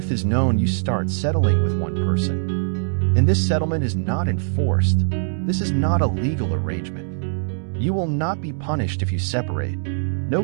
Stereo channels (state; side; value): silent; left; digital silence